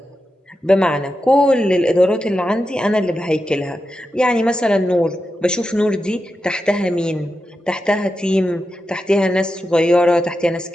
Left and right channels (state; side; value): normal; both; correlation 0.89